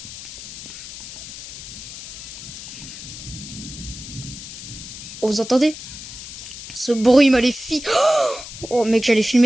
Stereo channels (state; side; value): noise; left; hiss, 12 dB below the sound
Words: Oh, vous entendez? Ce bruit maléfique. Oh mec, j'allais